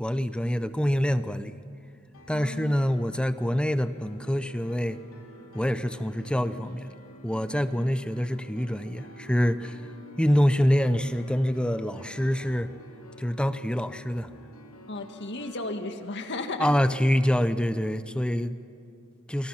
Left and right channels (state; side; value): normal; both; correlation 0.95